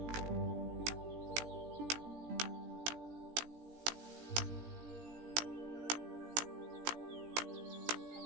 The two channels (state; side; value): late; left; 17 ms